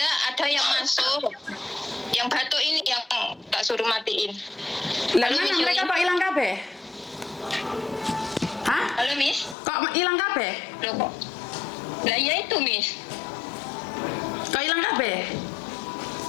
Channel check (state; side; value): drops out; right; at 9.6 s